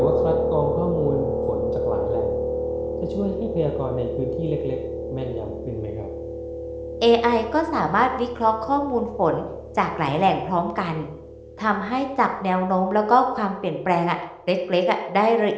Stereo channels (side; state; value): both; identical; correlation 1.00